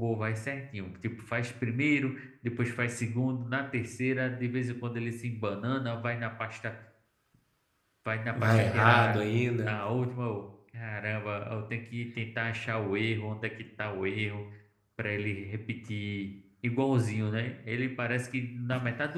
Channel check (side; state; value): both; identical; correlation 1.00